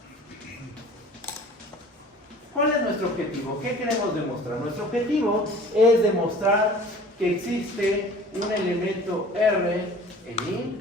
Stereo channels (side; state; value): both; normal; correlation 0.46